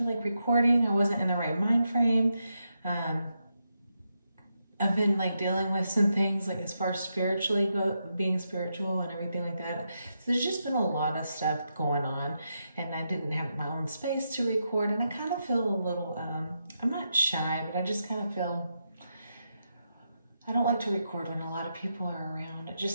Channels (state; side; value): inverted; both; correlation -0.84